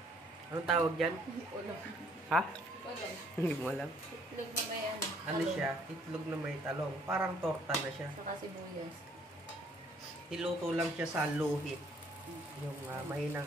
Anong tawag dyan? Ulam. Ha? Ulam. Hindi mo alam. Itlog na may ano. Ano siya? Itlog na may talong. Parang torta na siya. Saka sibuyas. Iluto lang siya sa luhit. Yung mahinang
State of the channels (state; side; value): normal; both; correlation 0.63